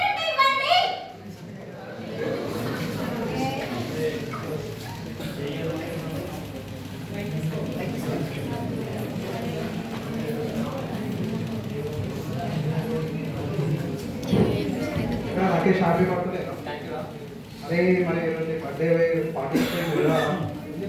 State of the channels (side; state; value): both; identical; correlation 1.00